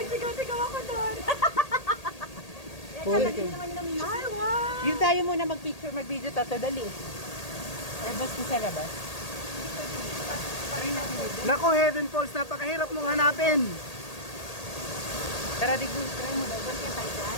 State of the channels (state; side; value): late; right; 1.8 ms